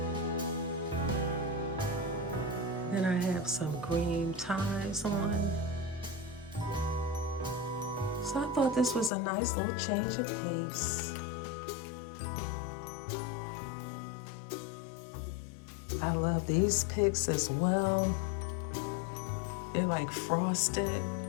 Then I have some green ties on. So I thought this was a nice little change of pace. I love these pics as well. They're like frosted.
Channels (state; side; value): drops out; right; at 9.1 s